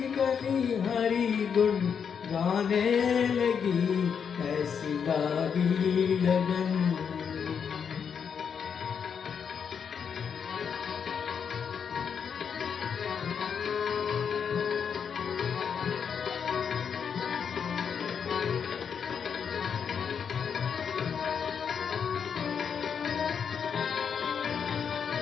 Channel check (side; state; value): right; quieter; 7.0 dB